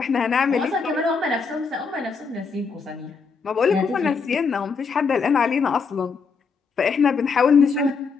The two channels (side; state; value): right; quieter; 5.1 dB